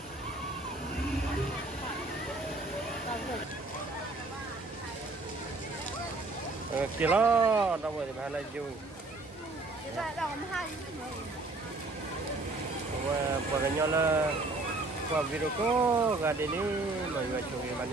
kìa lo đâu rồi thì bà lại vui và nhau là qua video có gà đến đi mọi người chụp hình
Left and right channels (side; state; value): left; quieter; 3.2 dB